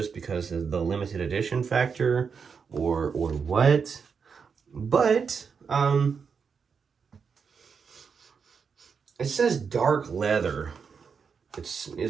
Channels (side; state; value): left; quieter; 6.0 dB